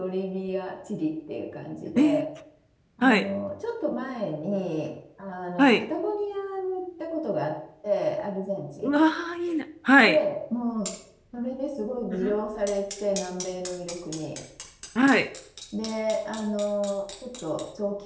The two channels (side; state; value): both; identical; correlation 1.00